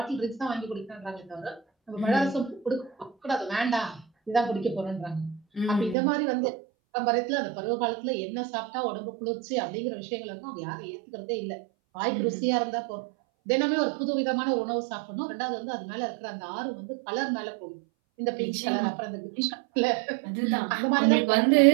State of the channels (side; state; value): left; drops out; at 6.0 s